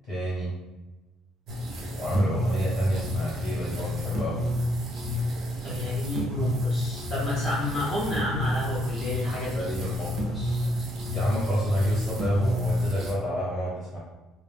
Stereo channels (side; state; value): both; normal; correlation 0.75